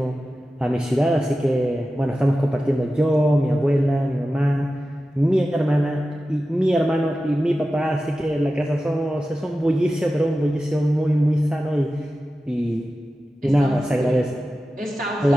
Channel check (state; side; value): normal; both; correlation 0.94